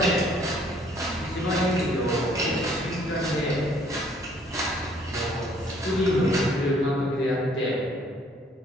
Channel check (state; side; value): normal; both; correlation 0.61